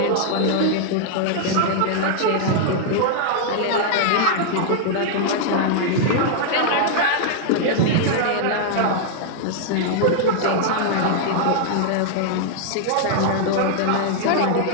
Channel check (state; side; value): different; both; correlation -0.01